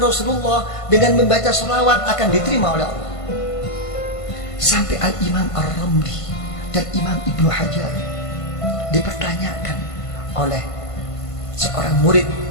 Rasulullah dengan membaca sholawat akan diterima oleh Allah. Sampai Al-Imam Ar-Ramli dan Imam Ibnu Hajar dipertanyakan oleh seorang murid,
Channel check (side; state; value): right; late; 1.5 ms